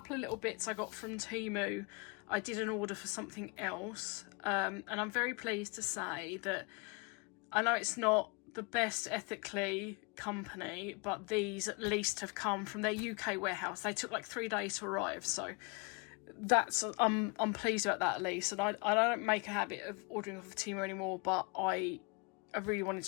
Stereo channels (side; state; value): right; quieter; 31.8 dB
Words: of little bits I got from TEMU. I did an order for something else. And I'm very pleased to say that I know it's not the best ethically company, but these at least have come from their UK warehouse. They took like 3 days to arrive, so that's I'm pleased about that at least. And I don't make a habit of ordering off of TEMU anymore, but I really wanted